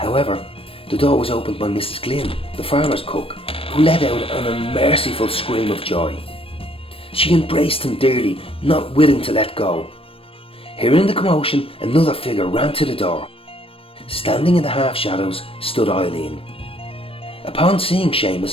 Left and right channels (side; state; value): right; late; 0.27 ms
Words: the door was opened by Mrs. Glynn, the farmer's cook, who let out an unmerciful scream of joy. She embraced him dearly, not willing to let go. Hearing the commotion, another figure ran to the door. Standing in the half-shadows stood Eileen. Upon seeing